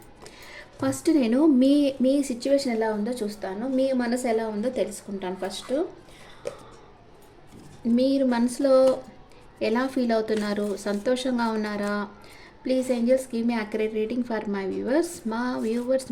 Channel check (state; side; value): identical; both; correlation 1.00